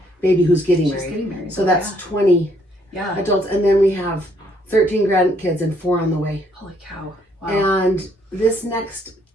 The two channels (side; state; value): both; normal; correlation 0.68